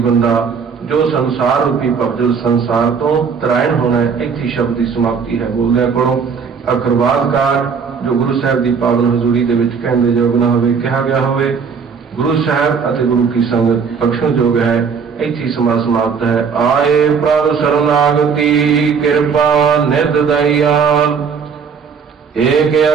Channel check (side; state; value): left; quieter; 6.0 dB